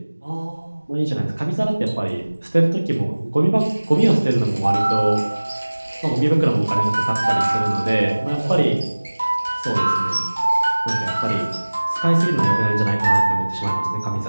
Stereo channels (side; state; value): both; inverted; correlation -1.00